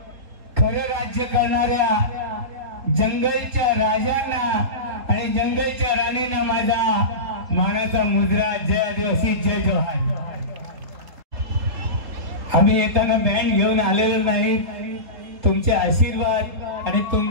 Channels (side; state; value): left; late; 3.8 ms